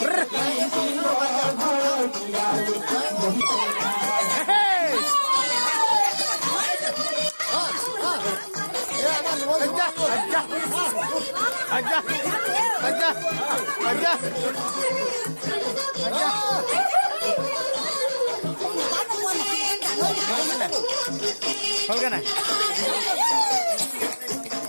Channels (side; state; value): both; inverted; correlation -1.00